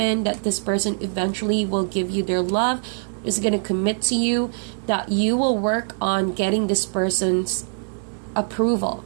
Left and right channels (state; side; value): silent; left; 63 dB below the other